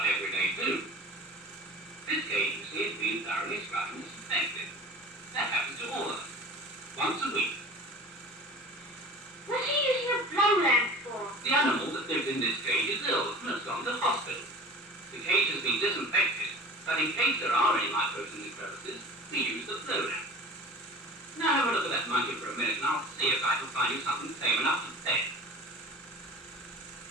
every day too. This cage, you see, has been thoroughly scrubbed and disinfected. That happens to all of them. Once a week. What's he using a blow lamp for? The animal that lives in this cage is ill and has gone to hospital. The cage has been disinfected, but in case there are any microbes in the crevices, we use the blow lamp. Now have a look at that monkey for a minute and I'll see if I can find you something tame enough to pet.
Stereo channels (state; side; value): normal; both; correlation 0.40